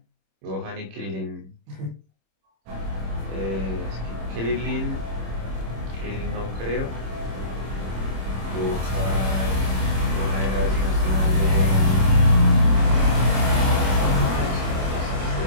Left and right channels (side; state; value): left; late; 26 ms